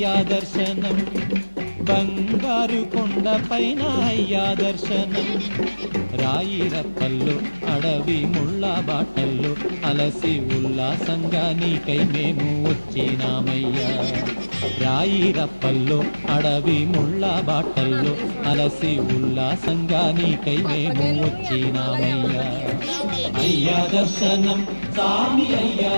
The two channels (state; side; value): inverted; both; correlation -1.00